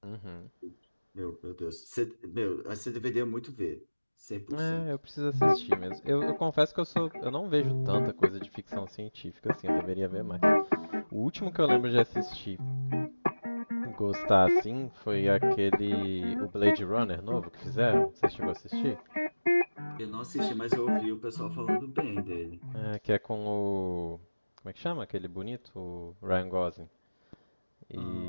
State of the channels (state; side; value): inverted; both; correlation -1.00